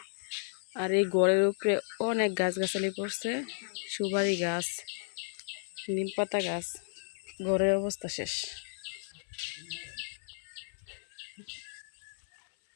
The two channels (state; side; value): silent; right; 56 dB below the other